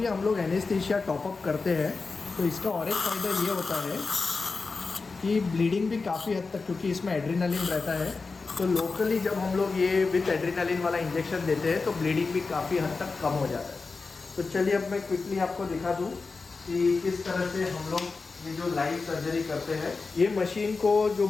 हम लोग एनेस्थीसिया टॉपअप करते हैं तो इसका और एक फ़ायदा ये होता है कि ब्लीडिंग भी काफ़ी हद तक, क्योंकि इसमें एड्रेनालिन रहता है, तो लोकली जब हम लोग ये विथ एड्रेनालिन वाला इंजेक्शन देते हैं तो ब्लीडिंग भी काफ़ी हद तक कम हो जाता है। तो चलिए अब मैं क्विकली आपको दिखा दूँ कि किस तरह से हम लोग ये जो लाइव सर्जरी करते हैं। ये मशीन को जो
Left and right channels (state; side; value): quieter; right; 4.2 dB